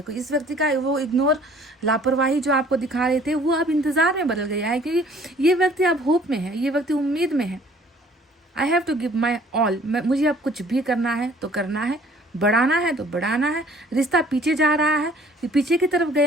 इस व्यक्ति का वो इग्नोर, लापरवाही जो आपको दिखा रहे थे, वो अब इंतज़ार में बदल गया है, क्योंकि ये व्यक्ति अब होप में है, ये व्यक्ति उम्मीद में है। I have to give my all, मुझे अब कुछ भी करना है तो करना है, बढ़ाना है तो बढ़ाना है। रिश्ता पीछे जा रहा है, पीछे की तरफ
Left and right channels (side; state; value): both; normal; correlation 0.55